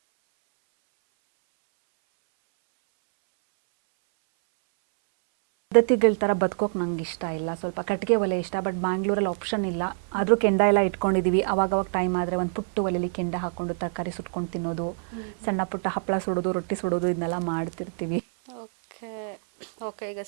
ಅಂತ ಮಾಡ್ತಾಳೆ, ತಂಬಳಿ ಅಂತ ಮಾಡ್ತಾಳೆ. ಒಂಥರ ನಮ್ಮ ಮನೆಗೆ ಬಂದರೆ ಒಂಥರ ಹಳ್ಳಿ ಮನೆ ಥರನೇ ಫೀಲ್ ಆಗುತ್ತೆ ಕಿಚನ್. ಈಗಿನ ಪದ್ಧತಿಗಳ ಥರ ಬದುಕೋಕೆ ನಂಗೆ ಇಷ್ಟ ಇಲ್ಲ. ಸ್ವಲ್ಪ ಕಟ್ಟಿಗೆ ಒಲೆ ಇಷ್ಟ, ಬಟ್ ಬ್ಯಾಂಗ್ಳೂರಲ್ಲಿ ಆಪ್ಷನ್ ಇಲ್ಲ. ಆದರೂ ಕೆಂಡ ಎಲ್ಲ ಇಟ್ಕೊಂಡಿದ್ದೀವಿ. ಅವಾಗವಾಗ ಟೈಮ್ ಆದರೆ ಒಂದು ಪುಟ್ಟು ಒಲೆಯಲ್ಲಿ ಕೆಂಡ ಹಾಕ್ಕೊಂಡು ತರಕಾರಿ ಸುಟ್ಕೊಂಡು ತಿನ್ನೋದು, ಸಣ್ಣ ಪುಟ್ಟ ಹಪ್ಪಳ ಸುಡೋದು, ರೊಟ್ಟಿ ಸುಡೋದು, ಇದನ್ನೆಲ್ಲ ಮಾಡ್ತಿರ್ತೀವಿ. ಓಕೆ ಓಕೆ, ಈಗ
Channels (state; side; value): silent; left; 61 dB below the other